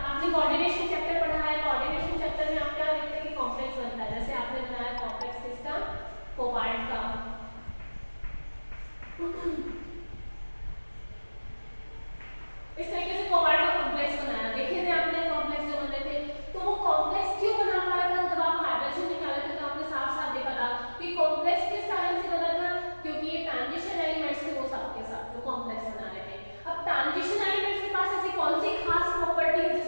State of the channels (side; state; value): both; inverted; correlation -1.00